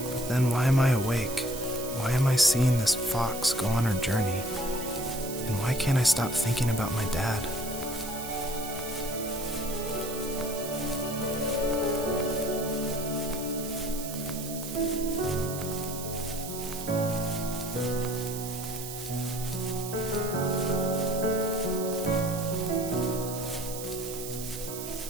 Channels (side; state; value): right; noise; hiss, 9 dB below the sound